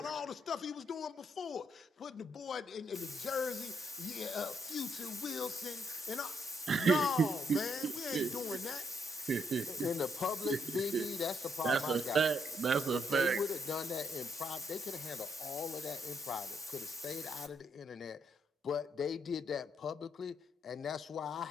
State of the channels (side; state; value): both; normal; correlation 0.75